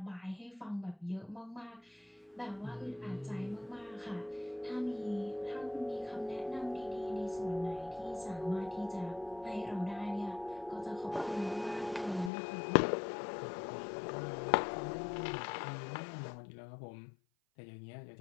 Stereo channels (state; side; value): drops out; right; at 12.3 s